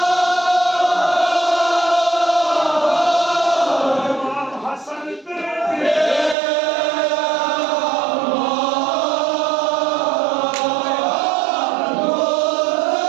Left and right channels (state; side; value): drops out; left; at 6.4 s